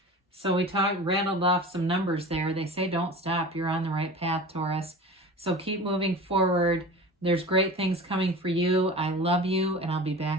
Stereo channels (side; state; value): both; normal; correlation 0.35